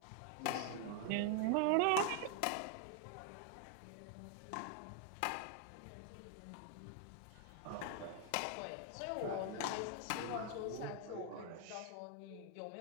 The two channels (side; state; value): both; different; correlation 0.00